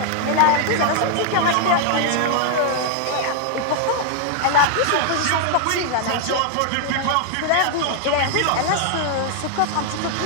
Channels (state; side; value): different; both; correlation 0.00